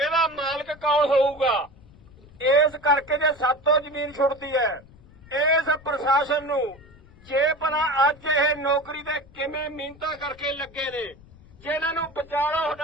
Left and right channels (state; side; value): noise; left; rumble, 24 dB below the sound